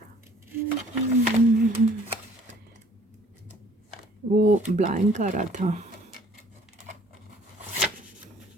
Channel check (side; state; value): both; normal; correlation 0.57